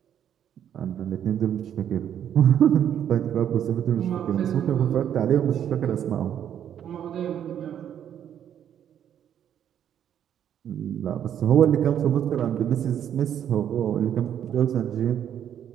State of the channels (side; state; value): left; quieter; 9.6 dB